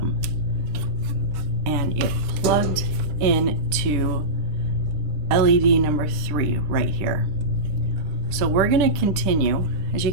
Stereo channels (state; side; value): late; left; 10 ms